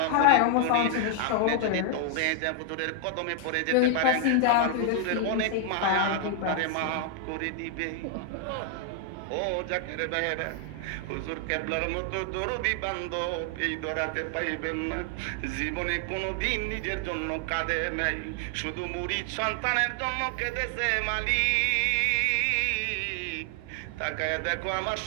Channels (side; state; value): both; different; correlation 0.00